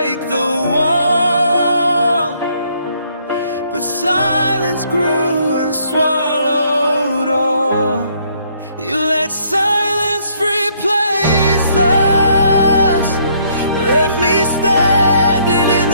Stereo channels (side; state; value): both; inverted; correlation -0.67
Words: the wall, but silence grew and swallowed all. You let silence replace us, left me standing in